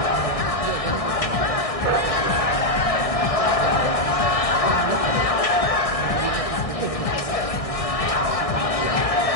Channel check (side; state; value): right; late; 1.6 ms